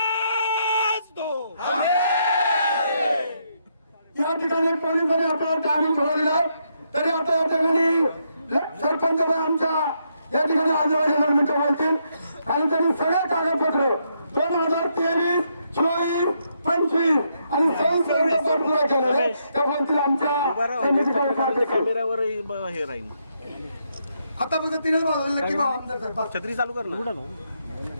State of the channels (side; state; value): both; inverted; correlation -0.77